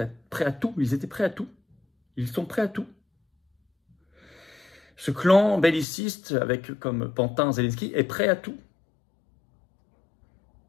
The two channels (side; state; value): right; drops out; at 5.9 s